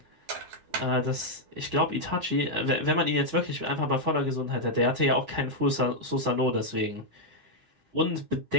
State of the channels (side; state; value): left; late; 9.8 ms